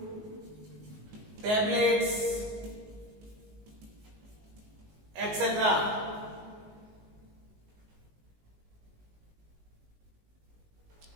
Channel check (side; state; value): left; late; 19 ms